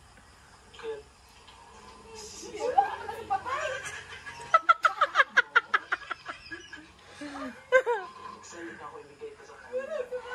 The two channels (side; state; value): both; identical; correlation 1.00